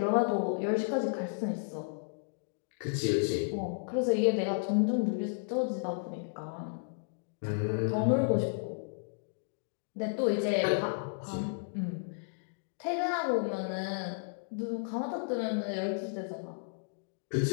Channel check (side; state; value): right; silent; digital silence